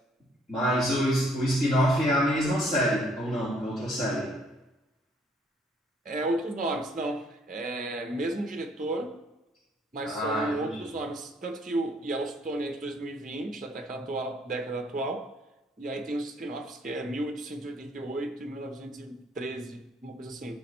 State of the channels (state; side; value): normal; both; correlation 0.64